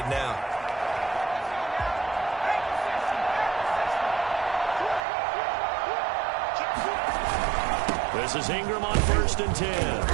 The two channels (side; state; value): left; drops out; at 5.1 s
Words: now. This is Ingram on 1st and